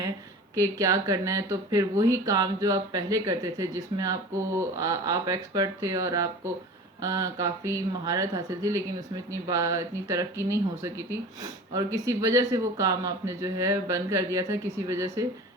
کہ کیا کرنا ہے، تو پھر وہی کام جو آپ پہلے کرتے تھے، جس میں آپ ایکسپرٹ تھے اور آپ کو کافی مہارت حاصل تھی، لیکن اس میں اتنی ترقی نہیں ہو سکی تھی، اور کسی وجہ سے وہ کام آپ نے جو ہے بند کر دیا تھا، کسی وجہ سے،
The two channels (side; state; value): both; normal; correlation 0.38